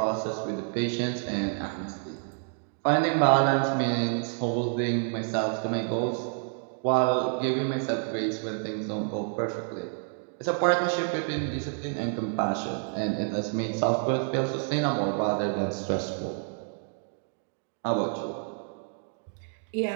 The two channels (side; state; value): left; silent; 59 dB below the other